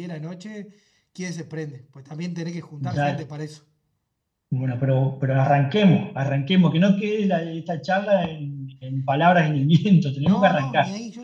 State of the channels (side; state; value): both; identical; correlation 1.00